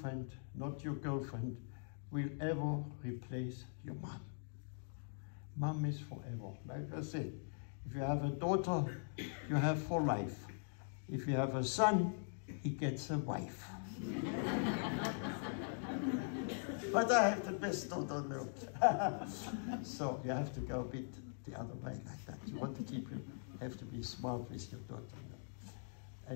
not your girlfriend will ever replace your mom. Mom is forever. Like I said, if you have a daughter, you have for life. If you have a son, he gets a wife. But I have the best daughter on earth. So you have to go a bit the other way like that. You want to keep you have to be smart with your daughter.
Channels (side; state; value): right; silent; digital silence